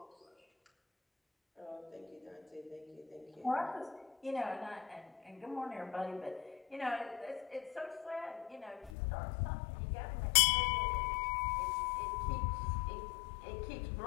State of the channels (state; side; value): drops out; right; at 8.9 s